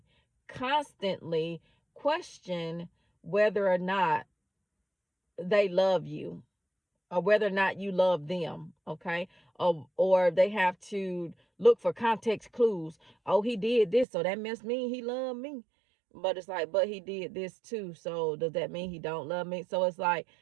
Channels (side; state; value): left; drops out; at 14.1 s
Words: constantly question whether or not they love you, or whether or not you love them, okay? Or they have to look for context clues. Oh, he did this, so that must mean he loved me. But it's like, but he did this too, so does that mean he don't love me? So it's like,